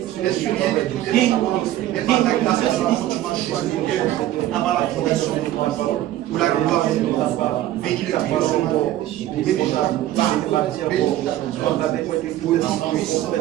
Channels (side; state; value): left; quieter; 13.8 dB